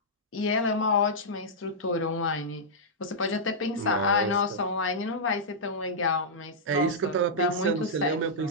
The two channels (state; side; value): normal; both; correlation -0.11